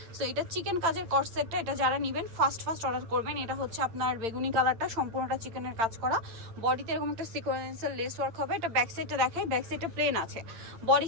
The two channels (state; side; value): late; left; 8.9 ms